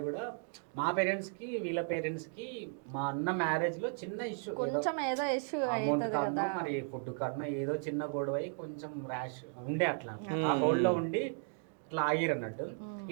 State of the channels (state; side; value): silent; left; 54 dB below the other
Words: కూడా, మా పేరెంట్స్ కి వీళ్ళ పేరెంట్స్ కి మా అన్న మ్యారేజ్ లో చిన్న ఇష్యూ, కొంచెం ఏదో ఇష్యూ అమౌంట్ కారణం మరి ఫుడ్ కారణం ఏదో చిన్న గొడవ అయి కొంచెం ర్యాష్ ఉండే, అట్లా ఆ హోల్డ్ లో ఉండి ఇట్లా ఆగిరు అన్నట్టు.